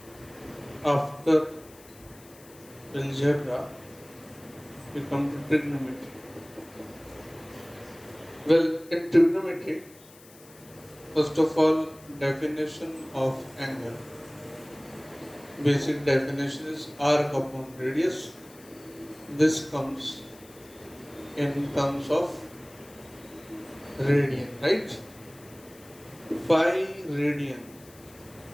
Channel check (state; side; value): noise; left; hiss, 23 dB below the sound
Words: after algebra, we come to trigonometry. Well, in trigonometry, first of all, definition of angle. Basic definition is arc upon radius. This comes in terms of radian, right? Pi radian,